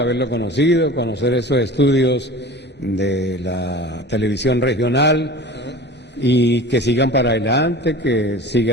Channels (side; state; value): both; normal; correlation 0.38